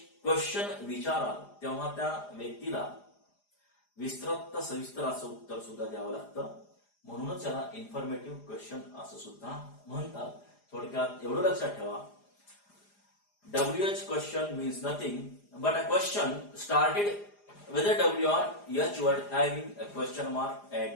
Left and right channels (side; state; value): right; late; 4.9 ms